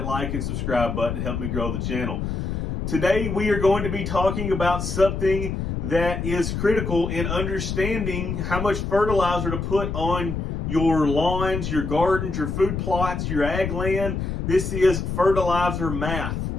like and subscribe button to help me grow the channel. Today we are going to be talking about something that is critical in understanding how much fertilizer to put on your lawns, your gardens, your food plots, your ag land. This is fertilizer math.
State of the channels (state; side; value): noise; left; rumble, 3 dB below the sound